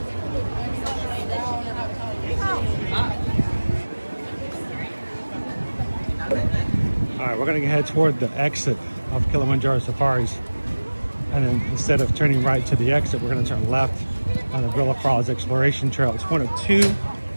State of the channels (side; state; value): both; inverted; correlation -1.00